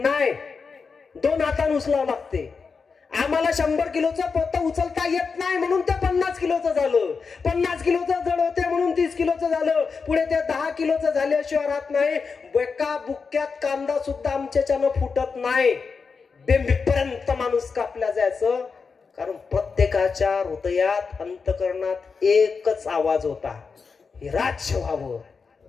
2 हातानं उचलावं लागते. आम्हाला 100 किलोचं पोतं उचलता येत नाही म्हणून ते 50 किलोचं झालं. 50 किलोचं जड होते म्हणून 30 किलोचं झालं. पुढे ते 10 किलोचं झाल्याशिवाय राहत नाही. एका बुक्क्यात कांदा सुद्धा आमच्याच्यानं फुटत नाही. बेंबीपर्यंत माणूस कापला जायचं. कारण प्रत्येकाच्या हृदयात अंतकरणात एकच आवाज होता, हे राज्य व्हावं,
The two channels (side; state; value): right; quieter; 5.1 dB